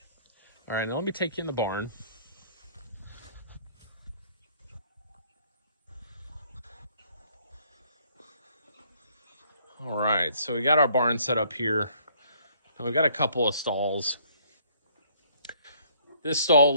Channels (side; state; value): both; inverted; correlation -0.62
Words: All right, now let me take you in the barn. All right, so we got our barn set up here. And we've got a couple of stalls. This stall